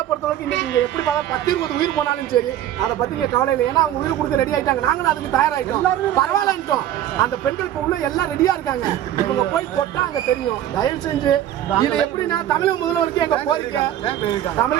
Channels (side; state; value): left; quieter; 11.9 dB